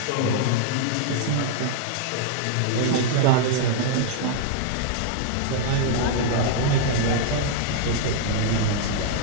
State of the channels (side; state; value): both; different; correlation -0.01